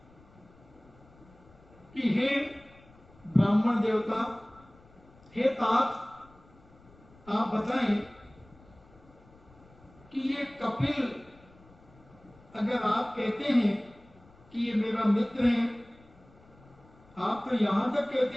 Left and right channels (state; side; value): noise; left; rumble, 26 dB below the sound